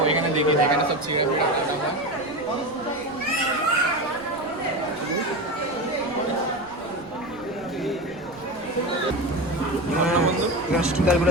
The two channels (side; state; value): right; noise; rumble, 24 dB below the sound